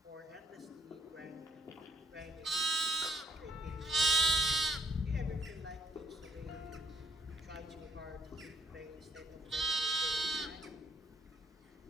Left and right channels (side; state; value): both; normal; correlation 0.71